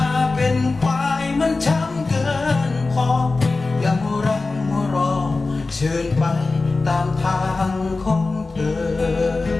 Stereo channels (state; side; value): quieter; right; 3.6 dB